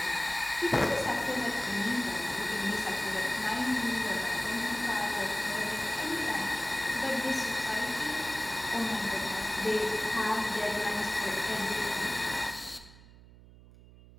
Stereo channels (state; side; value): noise; right; hum, 21 dB below the sound